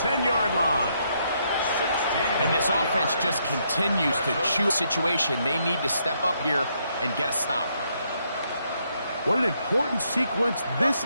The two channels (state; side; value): inverted; both; correlation -0.75